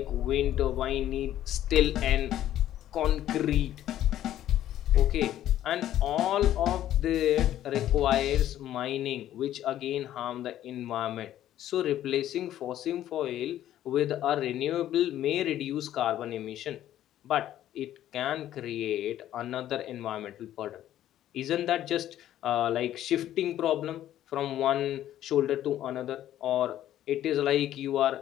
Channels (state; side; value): quieter; right; 12.3 dB